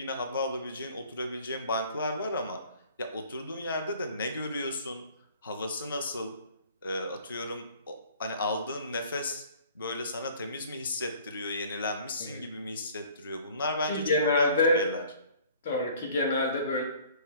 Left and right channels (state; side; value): inverted; both; correlation -0.52